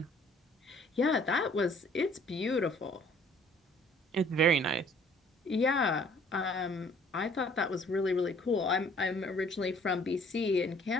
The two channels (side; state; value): both; normal; correlation 0.58